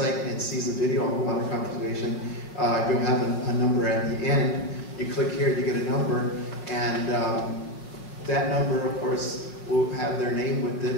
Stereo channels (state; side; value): late; right; 5.7 ms